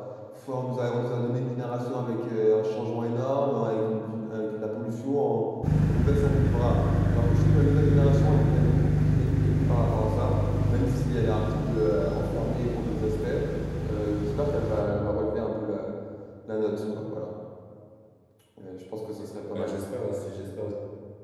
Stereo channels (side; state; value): both; identical; correlation 1.00